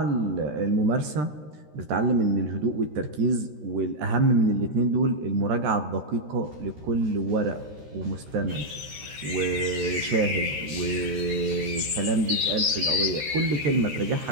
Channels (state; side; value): late; left; 13 ms